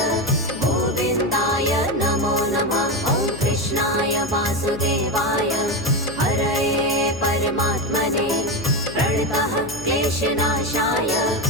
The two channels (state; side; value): noise; left; hum, 13 dB below the sound